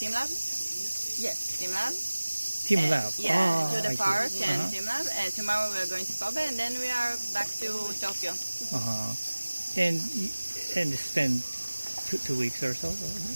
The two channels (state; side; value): inverted; both; correlation -1.00